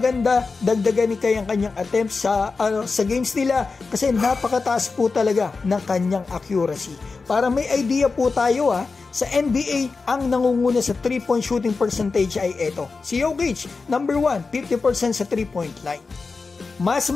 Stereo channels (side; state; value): right; quieter; 4.3 dB